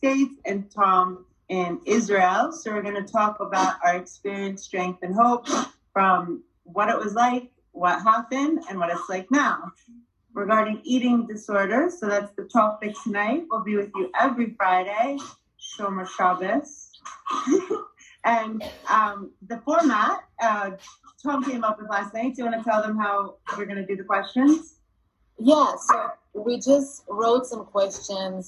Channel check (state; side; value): identical; both; correlation 1.00